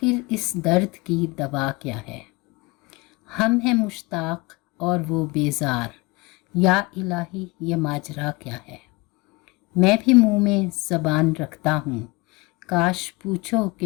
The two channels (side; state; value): right; quieter; 25.0 dB